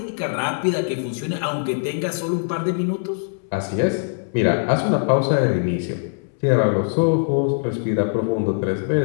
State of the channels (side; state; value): right; silent; 64 dB below the other